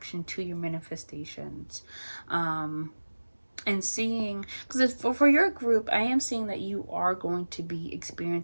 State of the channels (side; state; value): both; inverted; correlation -1.00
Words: to your manifestations. And seeing, because for your group, I am seeing that you are going to be